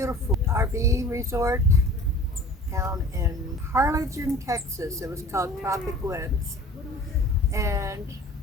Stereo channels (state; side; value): normal; both; correlation 0.44